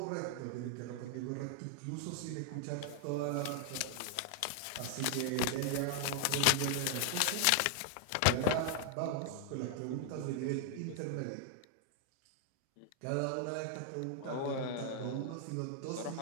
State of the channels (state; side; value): different; both; correlation 0.00